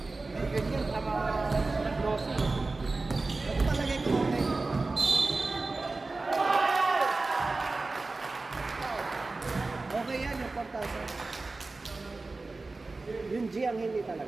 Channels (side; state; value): left; quieter; 3.5 dB